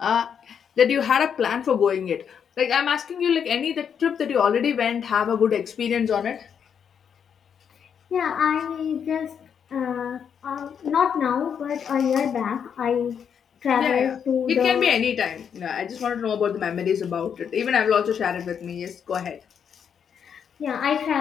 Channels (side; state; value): right; quieter; 7.6 dB